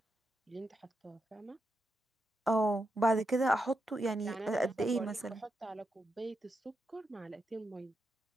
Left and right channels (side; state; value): both; normal; correlation 0.85